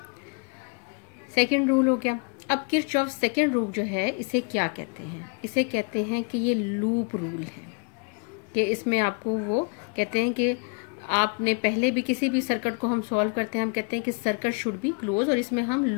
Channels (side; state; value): right; quieter; 36.7 dB